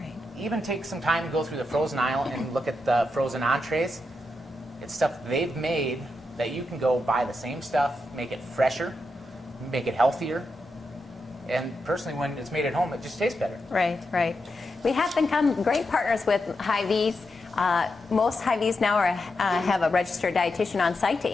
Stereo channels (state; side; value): normal; both; correlation 0.86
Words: Even take some time to go through the frozen aisle and look at the frozen entrees. It's stuff they've made that you can go buy the same stuff, make it fresher, make it healthier. And personally, when it's made at home, it just tastes better. Right, right. We have become great partners with Hy-Vee's. Most Hy-Vee's now have a registered dietitian on site to